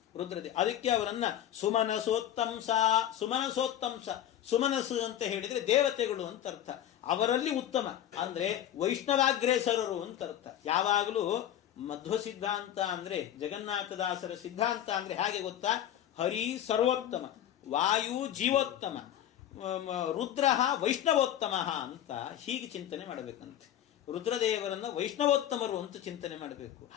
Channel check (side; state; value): right; quieter; 11.2 dB